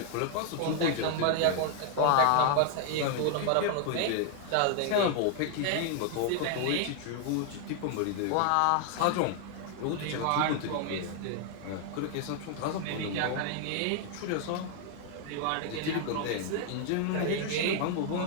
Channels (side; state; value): both; different; correlation 0.00